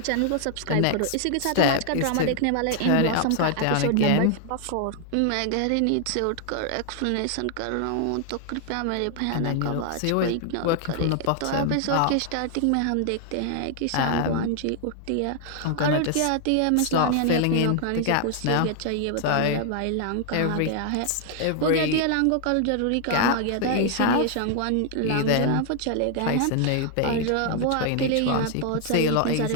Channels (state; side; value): different; both; correlation 0.00